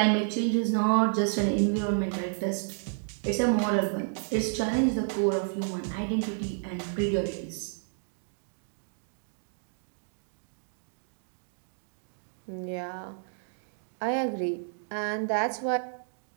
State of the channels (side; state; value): left; silent; digital silence